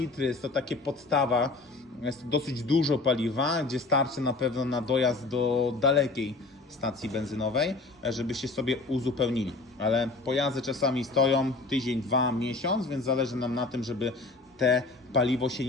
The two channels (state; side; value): quieter; right; 3.5 dB